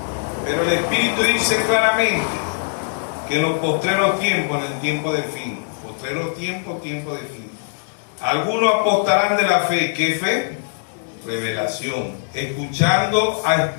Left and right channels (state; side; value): silent; right; digital silence